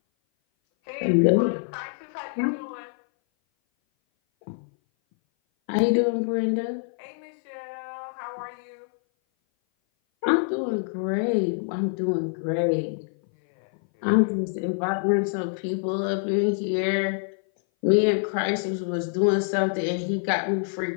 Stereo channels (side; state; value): right; silent; 58 dB below the other